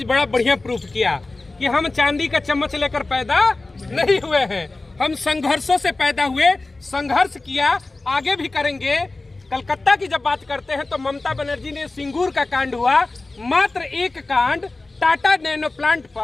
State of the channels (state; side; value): quieter; right; 3.2 dB